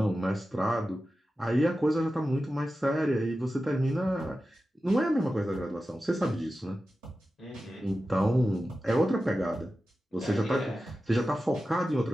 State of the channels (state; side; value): normal; both; correlation 0.93